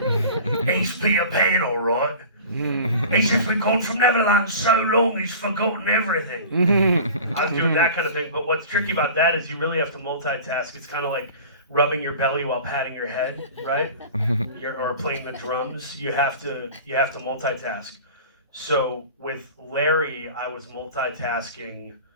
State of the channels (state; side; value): inverted; both; correlation -0.39